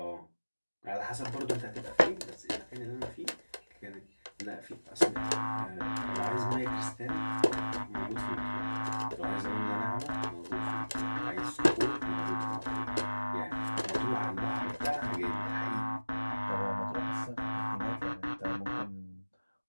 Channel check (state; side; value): inverted; both; correlation -1.00